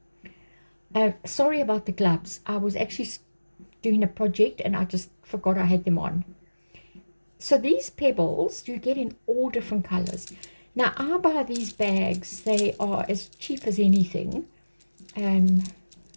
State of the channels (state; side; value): inverted; both; correlation -1.00